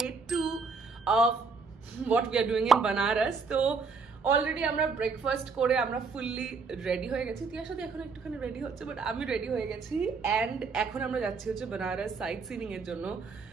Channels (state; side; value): quieter; left; 4.8 dB